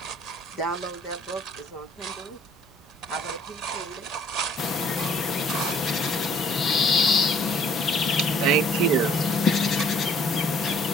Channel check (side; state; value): both; normal; correlation 0.59